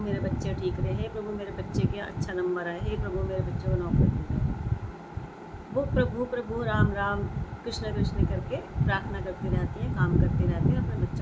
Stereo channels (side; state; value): both; identical; correlation 1.00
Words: मेरे बच्चे ठीक रहे, हे प्रभु मेरे बच्चे के अच्छा नंबर आए, हे प्रभु मेरे बच्चों को नौकरी मिल जाए। वो प्रभु राम राम कृष्ण कृष्ण करके प्रार्थना करती रहती हैं, काम करती रहती हैं, अपने